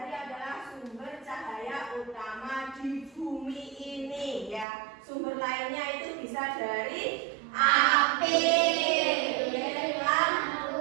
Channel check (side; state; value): left; drops out; at 4.7 s